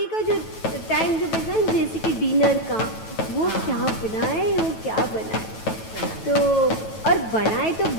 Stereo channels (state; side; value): late; right; 9.1 ms